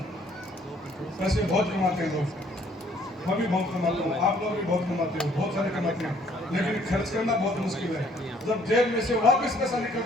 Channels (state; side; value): normal; both; correlation 0.62